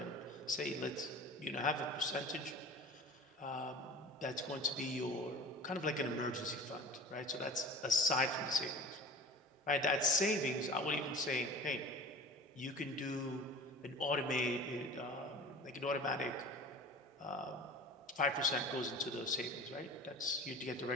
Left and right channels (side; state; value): both; normal; correlation 0.39